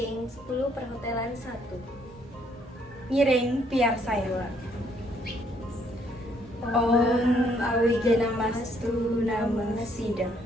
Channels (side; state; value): both; normal; correlation 0.68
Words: 10 perhotelan 1. Ngiring piar saya. Om Awigena Mastu Nama Sidang.